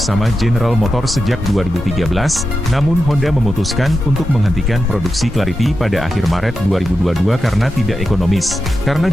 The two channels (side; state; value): both; normal; correlation 0.90